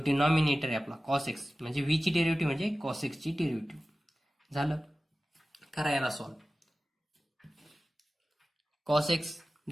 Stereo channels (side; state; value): both; normal; correlation 0.96